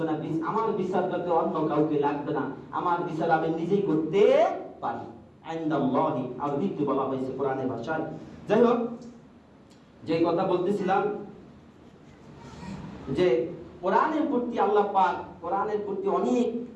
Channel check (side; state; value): both; identical; correlation 1.00